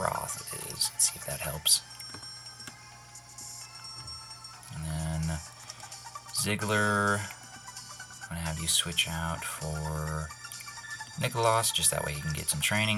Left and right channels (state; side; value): identical; both; correlation 1.00